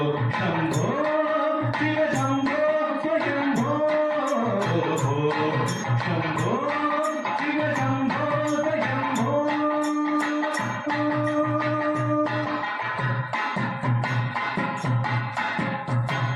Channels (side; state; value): both; identical; correlation 1.00